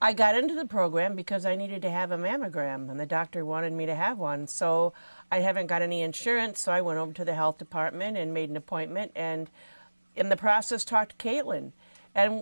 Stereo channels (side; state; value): both; inverted; correlation -1.00